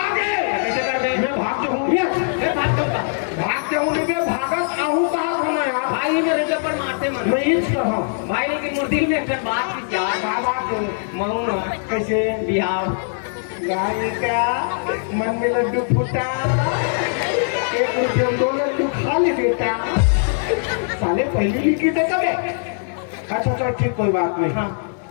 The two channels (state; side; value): silent; right; digital silence